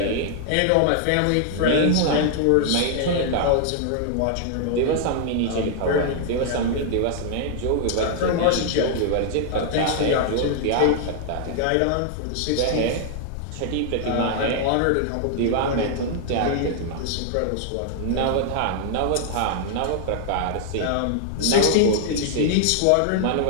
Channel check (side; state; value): both; different; correlation 0.00